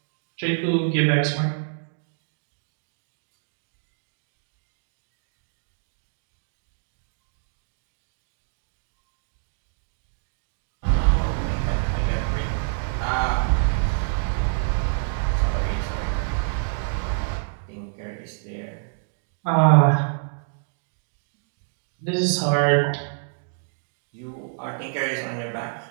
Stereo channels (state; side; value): silent; left; digital silence